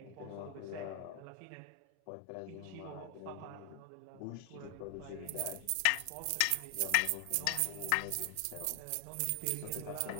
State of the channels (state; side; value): different; both; correlation 0.00